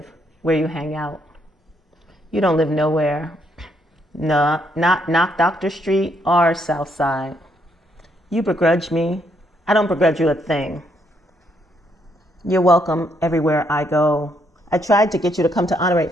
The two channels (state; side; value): normal; both; correlation 0.74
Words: where you hang out. You don't live nowhere. No, not Dr. Street or Southside. You begrudge me. I don't begrudge you a thing. You're welcome everywhere I go. I tried to get you to come to Honore.